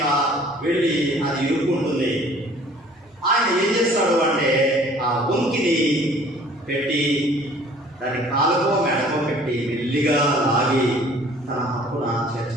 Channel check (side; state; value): both; normal; correlation 0.53